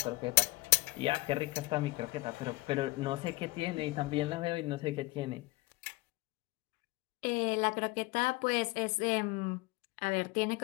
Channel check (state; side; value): quieter; right; 21.7 dB